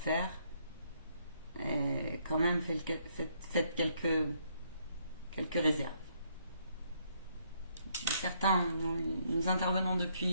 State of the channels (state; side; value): inverted; both; correlation -0.71